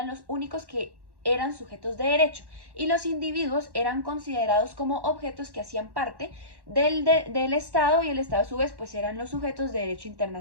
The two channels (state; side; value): late; left; 1.1 ms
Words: los únicos que eran sujetos de derecho y los individuos eran considerados como objetos que hacían parte del Estado, y el Estado a su vez pues eran los sujetos de derecho